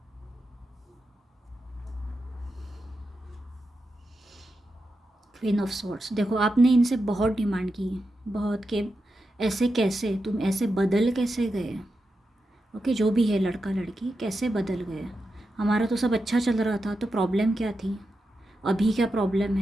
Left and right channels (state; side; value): normal; both; correlation 0.88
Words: Queen of swords. देखो आपने इनसे बहुत डिमांड की, बहुत, कि ऐसे कैसे तुम ऐसे बदल कैसे गए। ओके, जो भी है लड़का लड़की कैसे बदल गए। हमारा तो सब अच्छा चल रहा था, तो प्रॉब्लम क्या थी, अभी क्या प्रॉब्लम